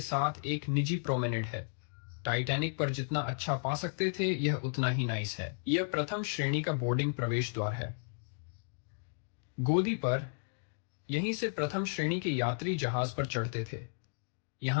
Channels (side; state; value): right; silent; digital silence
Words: साथ एक निजी प्रोमेनेड है। टाइटैनिक पर जितना अच्छा पा सकते थे, यह उतना ही नाइस है। यह प्रथम श्रेणी का बोर्डिंग प्रवेश द्वार है। गोदी पर यहीं से प्रथम श्रेणी के यात्री जहाज पर चढ़ते थे।